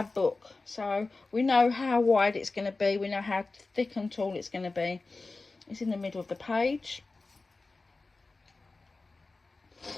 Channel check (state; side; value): quieter; right; 3.6 dB